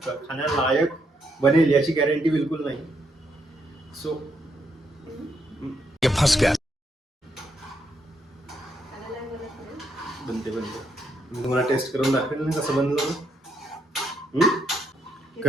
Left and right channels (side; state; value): both; normal; correlation 0.77